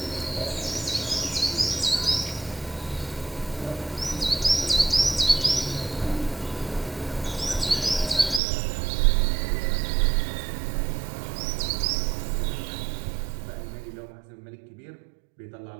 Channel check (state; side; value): drops out; left; at 8.4 s